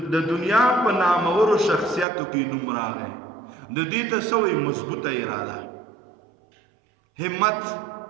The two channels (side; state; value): left; drops out; at 2.1 s